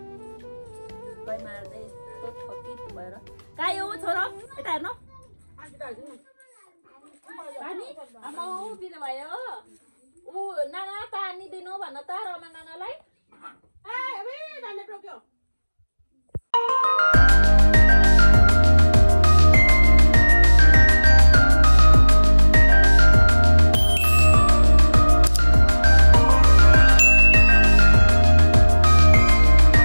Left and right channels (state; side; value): inverted; both; correlation -1.00